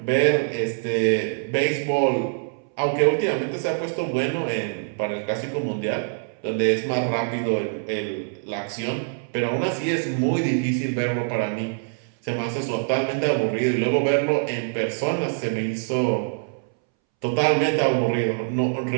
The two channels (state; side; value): silent; left; 62 dB below the other